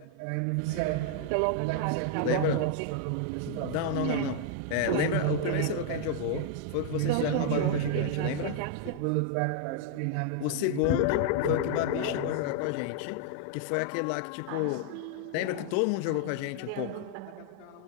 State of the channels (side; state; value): both; different; correlation 0.00